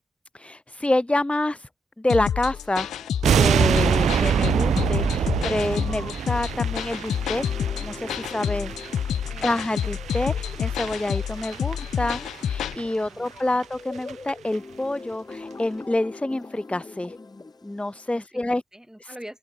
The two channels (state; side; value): normal; both; correlation 0.80